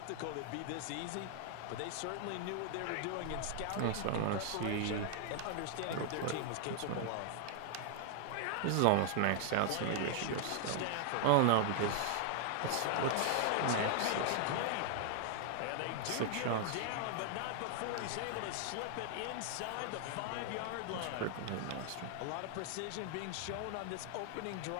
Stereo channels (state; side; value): different; both; correlation 0.00